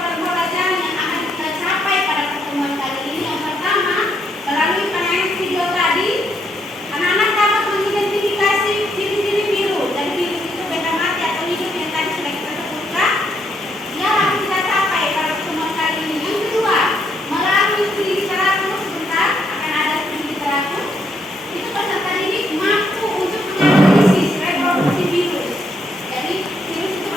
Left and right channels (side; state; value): both; normal; correlation 0.75